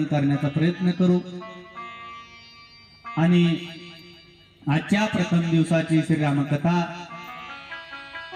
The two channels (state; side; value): identical; both; correlation 1.00